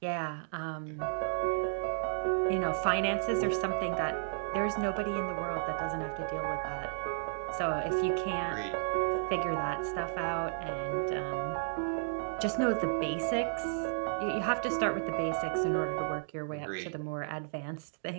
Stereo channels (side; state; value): left; silent; digital silence